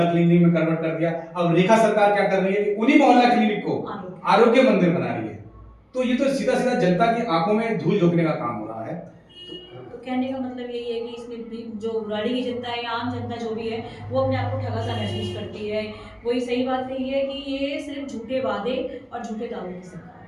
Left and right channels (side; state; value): both; identical; correlation 1.00